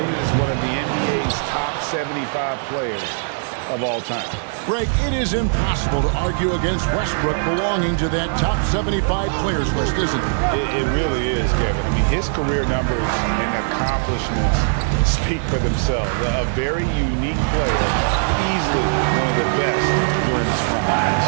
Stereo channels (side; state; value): left; silent; 66 dB below the other